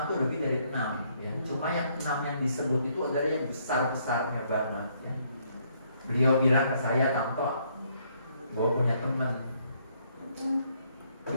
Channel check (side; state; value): both; inverted; correlation -0.69